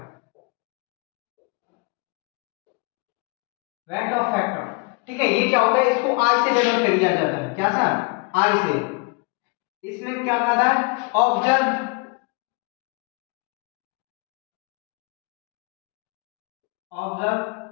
Weight of factor, ठीक है। ये क्या होता है? इसको आई से डिनोट कर दिया जाता है। क्या सर? आई से। इसमें क्या कहा था? Observe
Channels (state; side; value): quieter; right; 30.0 dB